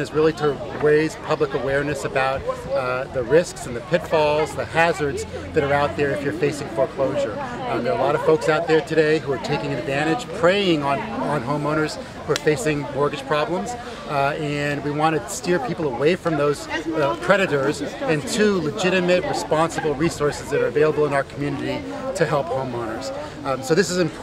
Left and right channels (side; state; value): both; identical; correlation 1.00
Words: is really to raise public awareness about the risks and the pitfalls, the hazards that are out there if you're facing foreclosure. There are a lot of folks out there today who are taking advantage, preying on homeowners who are facing mortgage problems. And we want to steer people away from those predators and to legitimate, responsible resources that are available in our community to help homeowners. So this is an